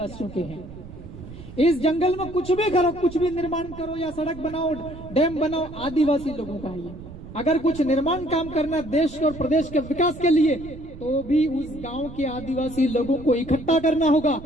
के हैं। इस जंगल में कुछ भी करो, कुछ भी निर्माण करो या सड़क बनाओ, डैम बनाओ, आदिवासी लोगों का है। अगर कुछ निर्माण काम करना देश और प्रदेश के विकास के लिए, तो भी उस गांव के आदिवासी लोगों को इकट्ठा करना होगा,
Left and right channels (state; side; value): noise; right; rumble, 14 dB below the sound